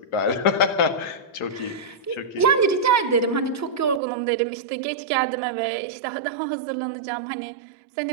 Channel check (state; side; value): drops out; left; at 4.0 s